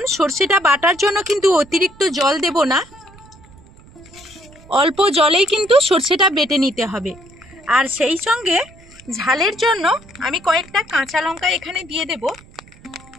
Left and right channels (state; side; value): noise; right; rumble, 24 dB below the sound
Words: সরষেটা বাটার জন্য কিন্তু অতিরিক্ত জল দেব না, অল্প জলেই কিন্তু সরষেটা বেটে নিতে হবে। আর সেই সঙ্গে ঝালের জন্য আমি কয়েকটা কাঁচা লঙ্কা এখানে দিয়ে দেব।